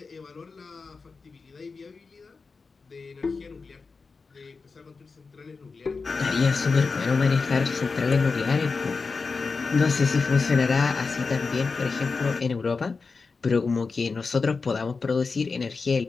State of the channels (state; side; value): quieter; right; 4.5 dB